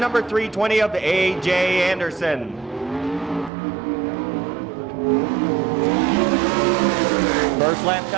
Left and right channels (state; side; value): drops out; left; at 3.5 s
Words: 320 of A.J. Anderson. First lap